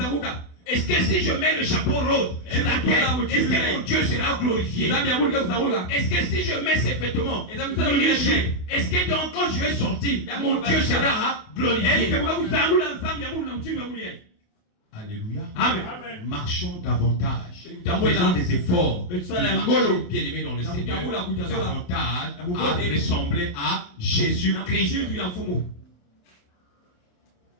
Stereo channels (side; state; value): right; late; 28 ms